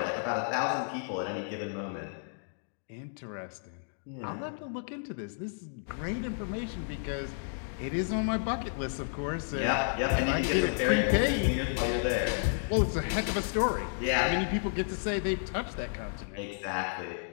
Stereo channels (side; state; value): right; silent; digital silence